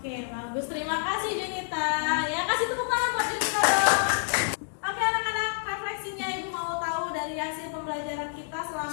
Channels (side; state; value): right; silent; digital silence